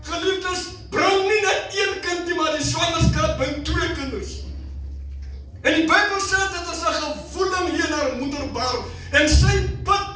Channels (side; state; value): both; identical; correlation 1.00